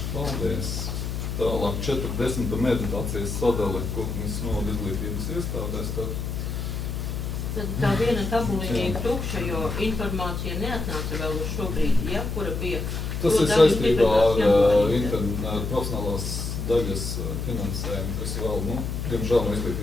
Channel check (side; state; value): left; noise; hum, 4 dB below the sound